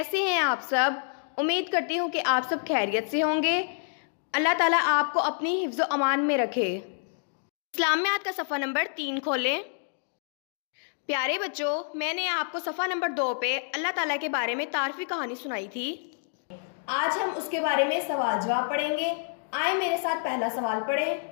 ہیں آپ سب؟ امید کرتی ہوں کہ آپ سب خیریت سے ہوں گے۔ اللہ تعالیٰ آپ کو اپنی حفظ و امان میں رکھے۔ اسلامیات کا صفحہ نمبر 3 کھولیں۔ پیارے بچوں، میں نے آپ کو صفحہ نمبر 2 پہ اللہ تعالیٰ کے بارے میں تعارفی کہانی سنائی تھی۔ آج ہم اس کے بارے میں سوال جواب پڑھیں گے۔ آئیں میرے ساتھ پہلا سوال پڑھیں۔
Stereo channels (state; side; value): silent; right; digital silence